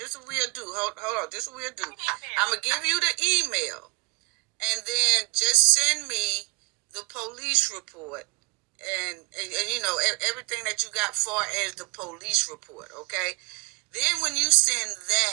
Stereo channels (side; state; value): left; quieter; 28.9 dB